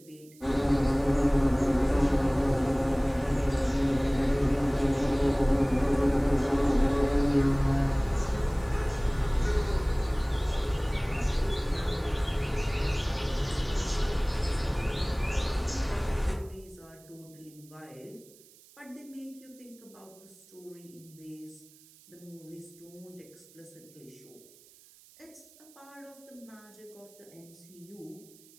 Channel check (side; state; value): right; noise; hiss, 25 dB below the sound